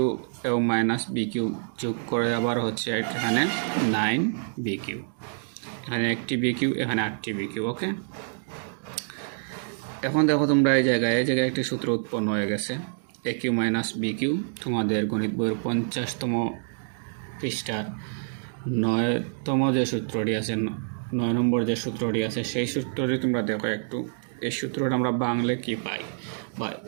এবং মাইনাস BQ যোগ করে আবার হচ্ছে এখানে 9BQ। এখানে একটি BQ, এখানে 8টি BQ। ওকে, এখন দেখো তোমরা এই জায়গায় একটি সূত্র উৎপন্ন হয়ে গেছে, AQ মাইনাস BQ। তোমাদের গণিত বইয়ের 50তম পৃষ্ঠার 9তম যে সূত্রটি আছে, 9 নম্বর যে সূত্রটি আছে, সেই সূত্রটি তোমরা দেখো একটু। এই সূত্রটা আমরা বাংলে কি পাই, বা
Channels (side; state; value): left; silent; digital silence